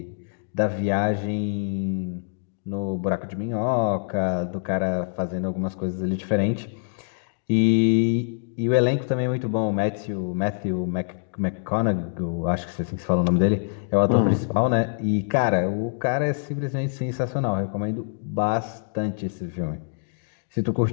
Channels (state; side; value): silent; right; digital silence